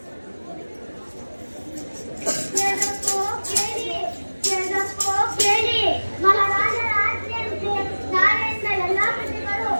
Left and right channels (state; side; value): inverted; both; correlation -1.00